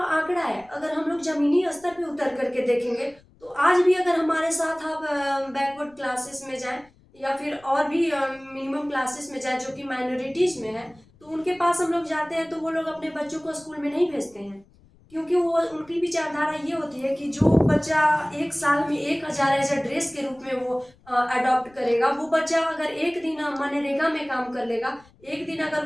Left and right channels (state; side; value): noise; left; rumble, 29 dB below the sound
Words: है, अगर हम लोग जमीनी स्तर पे उतर करके देखेंगे तो आज भी अगर हमारे साथ आप बैकवर्ड क्लासेस में जाएं या फिर और भी मिनिमम क्लासेस में जाएं जो कि माइनॉरिटीज में है, तो उनके पास हम लोग जाते हैं तो वो लोग अपने बच्चों को स्कूल में नहीं भेजते हैं। क्योंकि वो उनकी विचारधारा ये होती है कि जो बच्चा एक साल में 1000 एज अ ड्रेस के रूप में वो अडॉप्ट करेगा, वो बच्चा अगर एक दिन मनरेगा में काम कर लेगा, एक दिन अगर